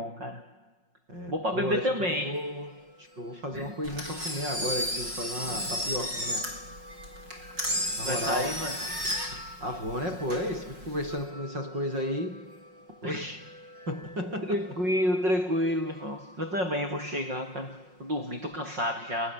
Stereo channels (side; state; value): left; late; 5.5 ms